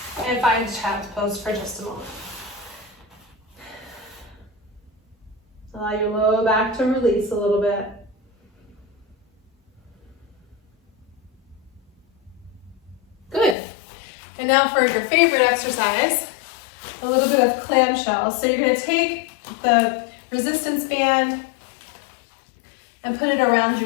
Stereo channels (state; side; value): drops out; right; at 13.6 s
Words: and find child's pose for just a moment. Allow your low back to release a little bit. Good. And now for your favorite exercise, a little bit of clamshell. So you're going to take the resistance band and put it around